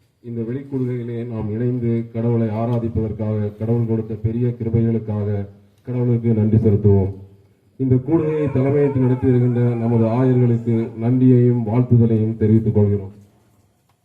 இந்த வெளிக்கூடுகையிலே நாம் இணைந்து கடவுளை ஆராதிப்பதற்காக, கடவுள் கொடுத்த பெரிய கிருபைகளுக்காக கடவுளுக்கு நன்றி செலுத்துவோம். இந்த கூடுகையை தலைமையேற்று நடத்தி வருகின்ற நமது ஆயர்களுக்கு நன்றியையும் வாழ்த்துதலையும் தெரிவித்துக் கொள்கிறோம்.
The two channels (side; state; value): both; identical; correlation 1.00